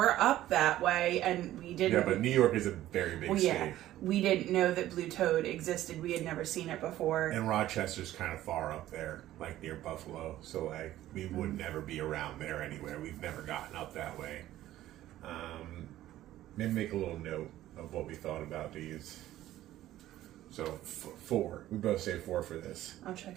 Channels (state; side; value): quieter; left; 14.1 dB